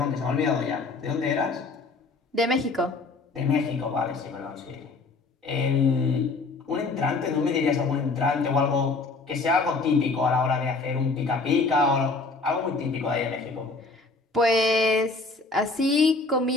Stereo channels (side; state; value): right; quieter; 3.8 dB